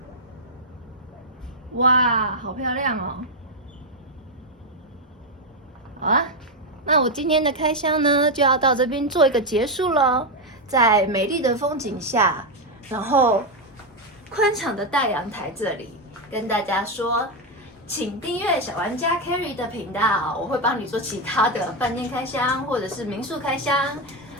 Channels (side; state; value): both; normal; correlation 0.05